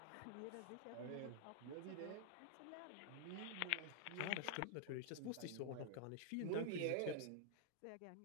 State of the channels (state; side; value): different; both; correlation -0.01